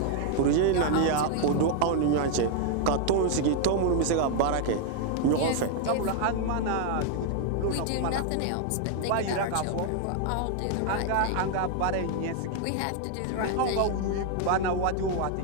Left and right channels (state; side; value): different; both; correlation 0.00